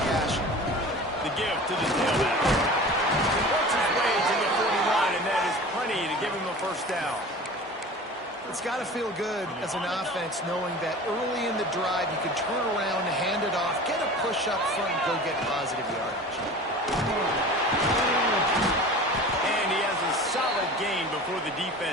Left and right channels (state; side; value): normal; both; correlation 0.38